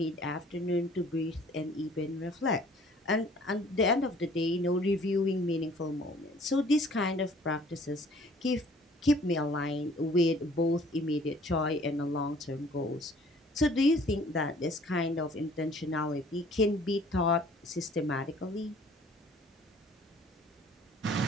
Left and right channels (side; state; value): both; normal; correlation 0.55